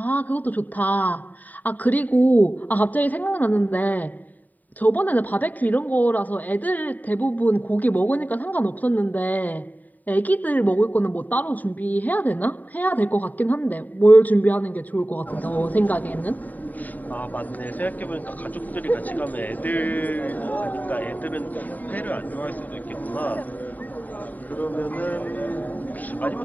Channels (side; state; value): right; late; 0.083 ms